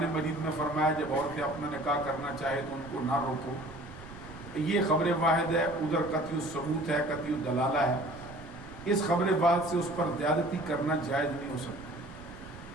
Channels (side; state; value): right; noise; rumble, 17 dB below the sound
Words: مجید میں فرمایا جب عورتیں اپنا نکاح کرنا چاہے تو ان کو نہ روکو، یہ خبر واحد ہے، ادھر قطعی ثبوت ہے، قطعی دلالہ ہے، اس خبر واحد سے اس پر زیادتی کرنا جائز نہیں ہو